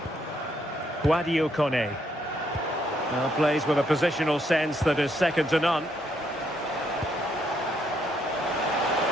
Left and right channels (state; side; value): normal; both; correlation 0.73